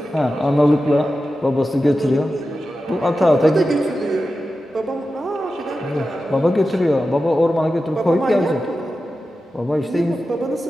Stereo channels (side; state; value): both; normal; correlation 0.92